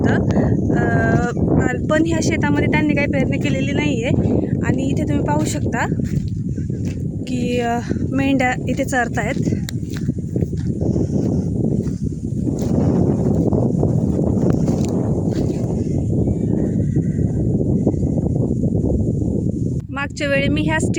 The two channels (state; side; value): identical; both; correlation 1.00